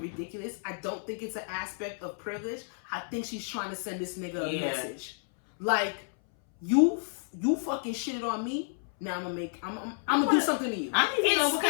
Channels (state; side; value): silent; right; 57 dB below the other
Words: I don't think it's an aspect of privilege. I think she's trying to send this nigga a message, like you fucking shitted on me. Now I'm gonna do something to you. I need to know what